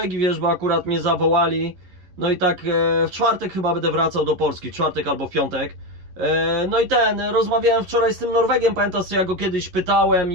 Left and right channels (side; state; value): left; late; 11 ms